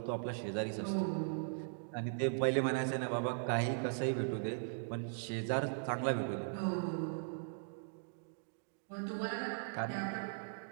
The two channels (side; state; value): left; silent; digital silence